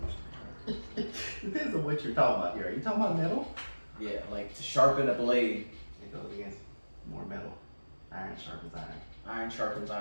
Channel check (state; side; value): inverted; both; correlation -1.00